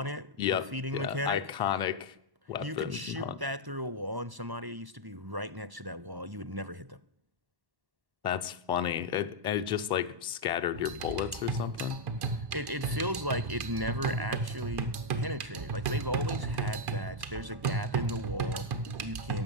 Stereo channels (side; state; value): left; late; 1.1 ms